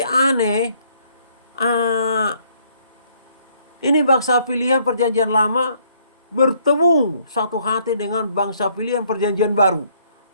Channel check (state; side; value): inverted; both; correlation -0.66